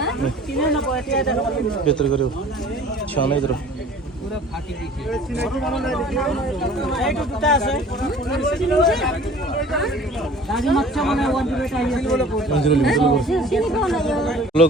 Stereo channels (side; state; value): both; normal; correlation 0.48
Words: बेटारि गारियाव थिखांना नायदों